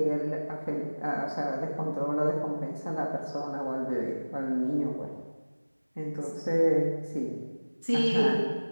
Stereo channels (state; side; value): inverted; both; correlation -1.00